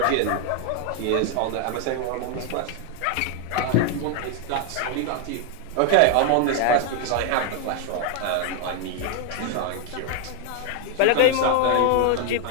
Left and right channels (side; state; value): both; different; correlation 0.01